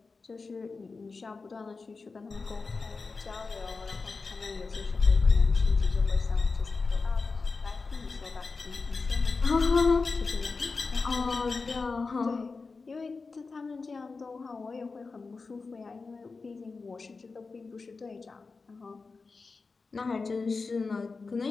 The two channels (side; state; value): right; quieter; 4.2 dB